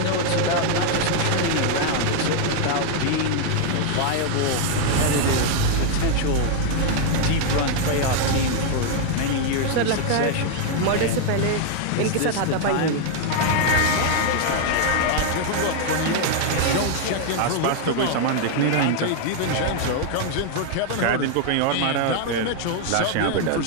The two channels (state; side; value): different; both; correlation 0.00